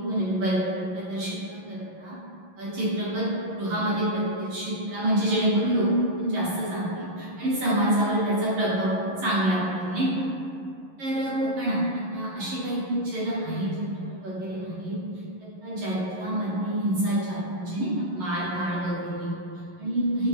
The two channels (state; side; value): late; left; 11 ms